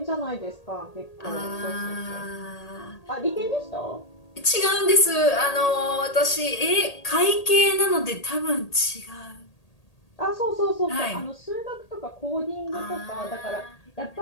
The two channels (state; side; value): late; right; 1.8 ms